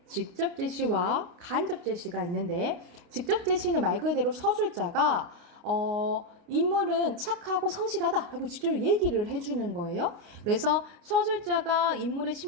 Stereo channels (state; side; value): late; left; 29 ms